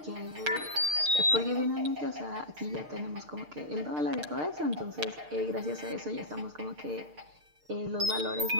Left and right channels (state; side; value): late; left; 6.6 ms